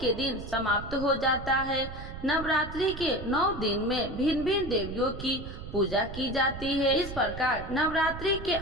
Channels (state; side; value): noise; right; rumble, 10 dB below the sound